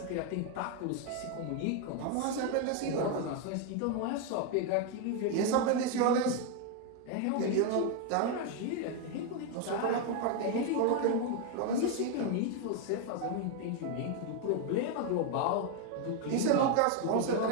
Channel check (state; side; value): different; both; correlation 0.01